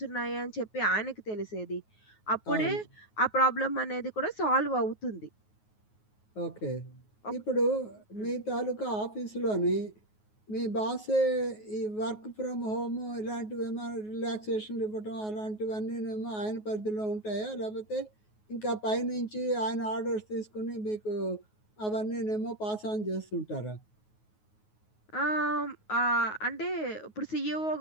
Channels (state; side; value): late; right; 9.4 ms